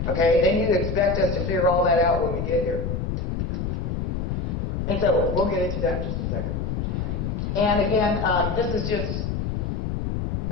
Okay? Then you expect us to figure all that out when we get here. And so we'll get into that in just a second. And again, this is just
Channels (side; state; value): left; noise; rumble, 2 dB below the sound